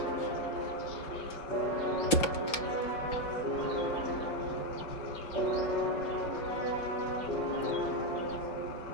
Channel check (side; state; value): right; late; 5.2 ms